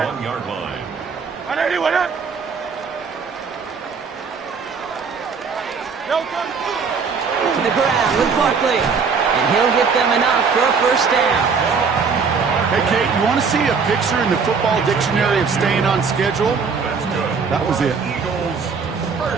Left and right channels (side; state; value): left; quieter; 5.4 dB